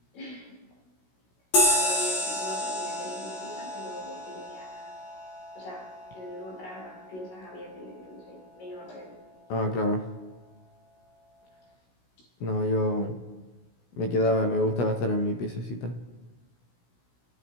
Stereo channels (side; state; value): right; late; 16 ms